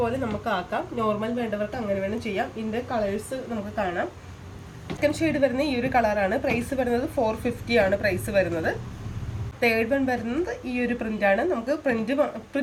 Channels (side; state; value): both; identical; correlation 1.00